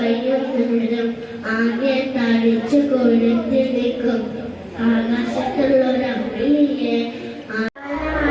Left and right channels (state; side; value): identical; both; correlation 1.00